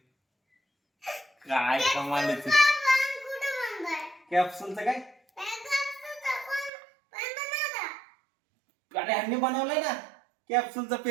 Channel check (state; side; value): drops out; left; at 6.7 s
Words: काय कमाल आहे. कॅप्सूलचं काय? अरे ह्यांनी बनवलंय ना कॅप्सूलचा